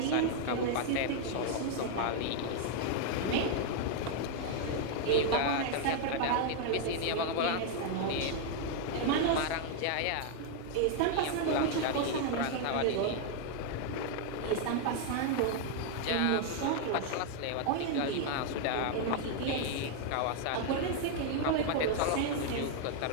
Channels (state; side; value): different; both; correlation 0.00